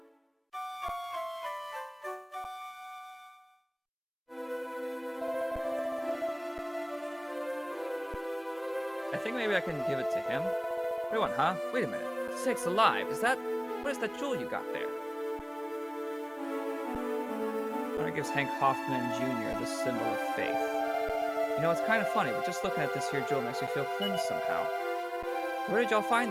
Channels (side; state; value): both; identical; correlation 1.00